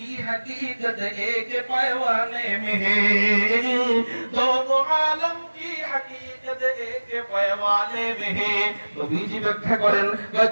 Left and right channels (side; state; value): both; inverted; correlation -1.00